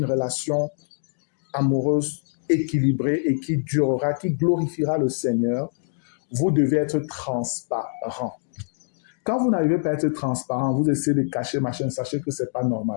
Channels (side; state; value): right; silent; digital silence